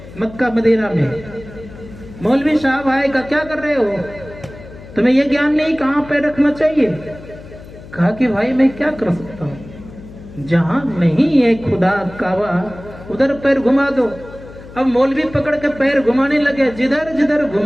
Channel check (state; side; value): noise; left; hum, 17 dB below the sound